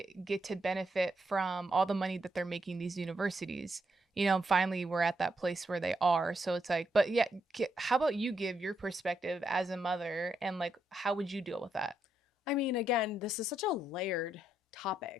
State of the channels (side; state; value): both; normal; correlation 0.79